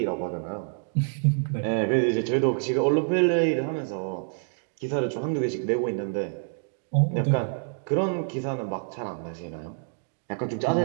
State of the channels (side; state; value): left; silent; digital silence